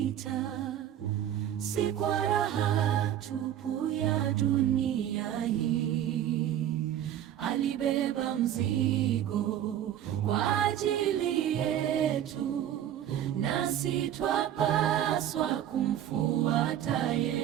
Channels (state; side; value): quieter; left; 11.0 dB